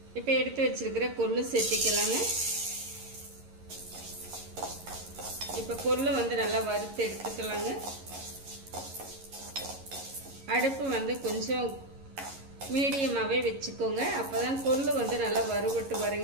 இப்போ எடுத்து வச்சிருக்கிற கொள்ளு சேர்த்திக்கலாங்க. இப்போ கொள்ளு நல்லா வறுத்து எடுத்துக்கலாங்க. அடுப்பு கொஞ்சம் மீடியமாவே வச்சுக்கோங்க. அப்பதான் கொள்ளு நல்லா வறுபட்டு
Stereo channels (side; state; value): left; late; 11 ms